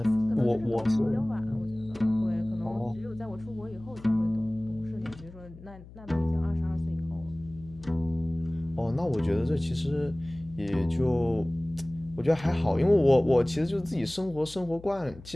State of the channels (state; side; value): noise; left; hum, 18 dB below the sound